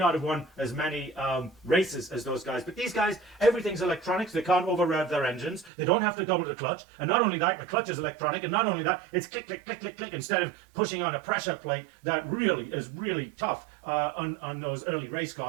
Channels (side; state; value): left; drops out; at 5.7 s